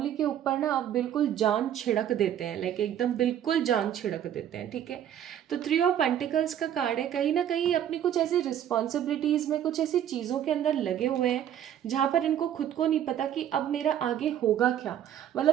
के ऊपर ना अब बिल्कुल जान छिड़क देते हैं, लाइक एकदम बिल्कुल जान छिड़क देते हैं, ठीक है। तो थ्री ऑफ पेंटिकल्स का कार्ड है, कहीं ना कहीं अपनी कुछ ऐसी रिस्पॉन्सिबिलिटीज़ में, कुछ ऐसी चीज़ों के अंदर लगे हुए हैं जहाँ पर इनको खुद को नहीं पता कि अब मेरा आगे होगा क्या।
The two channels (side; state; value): left; quieter; 10.4 dB